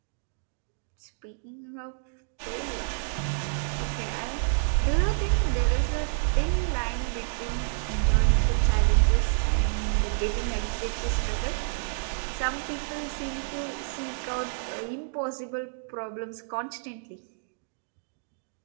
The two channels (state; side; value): silent; left; digital silence